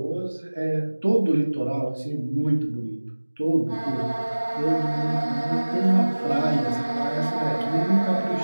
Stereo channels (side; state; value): both; inverted; correlation -1.00